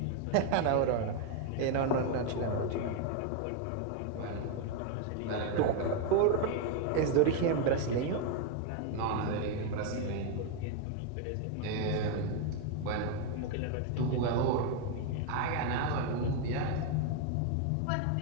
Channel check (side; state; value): both; different; correlation 0.01